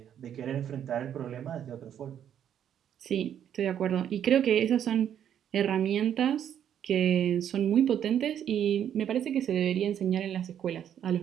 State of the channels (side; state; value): left; quieter; 9.6 dB